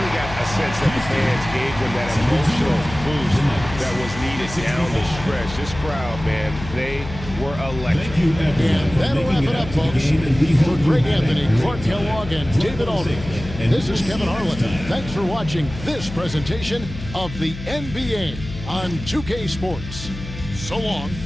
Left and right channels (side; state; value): left; noise; hum, 11 dB below the sound